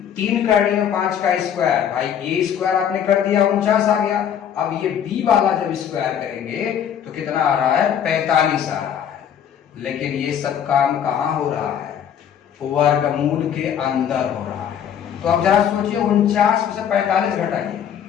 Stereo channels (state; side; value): quieter; right; 8.9 dB